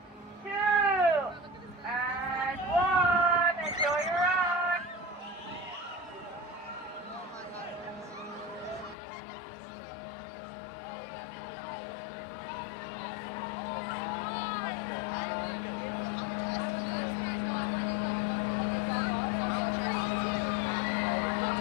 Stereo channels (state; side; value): drops out; right; at 9.0 s